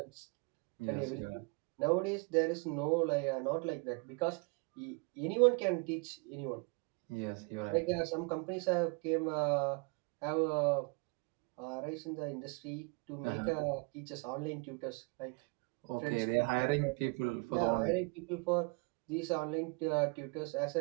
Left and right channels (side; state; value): left; quieter; 30.7 dB